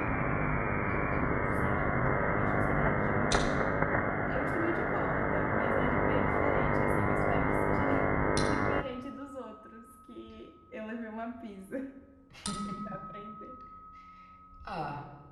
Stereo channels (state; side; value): identical; both; correlation 1.00